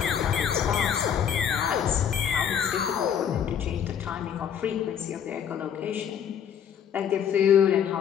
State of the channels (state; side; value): quieter; right; 8.5 dB